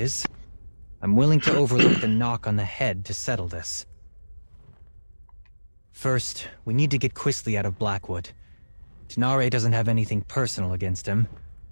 I'm willing to overlook the knock on the head to settle this. First, we need to get Quisley out of Blackwood. Tanare doesn't have anything personal against him.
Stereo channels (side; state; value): both; inverted; correlation -1.00